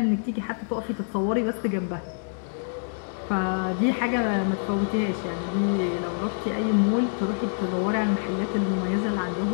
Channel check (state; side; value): silent; right; digital silence